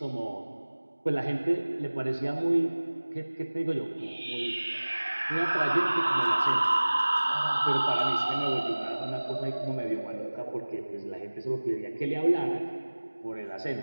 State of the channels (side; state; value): both; inverted; correlation -1.00